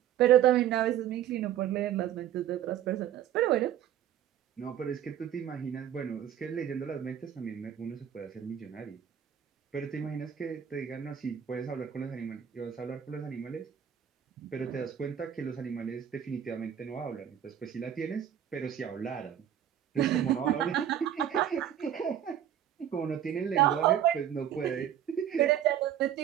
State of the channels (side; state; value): left; quieter; 10.2 dB